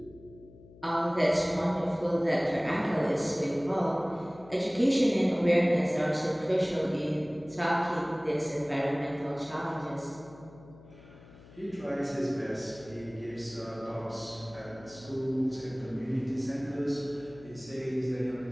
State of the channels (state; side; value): noise; left; hum, 21 dB below the sound